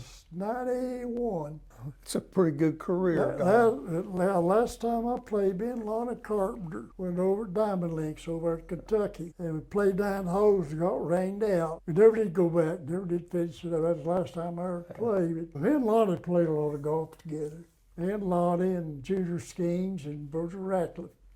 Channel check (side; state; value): both; identical; correlation 1.00